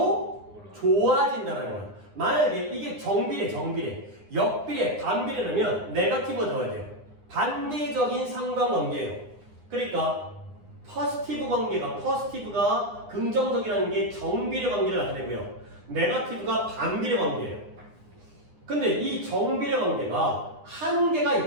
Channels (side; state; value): left; late; 9.8 ms